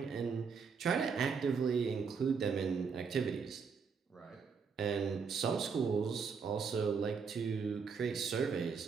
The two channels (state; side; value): quieter; left; 5.8 dB